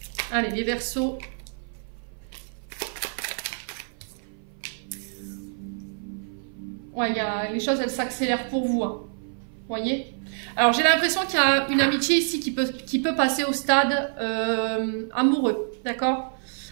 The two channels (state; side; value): silent; left; 56 dB below the other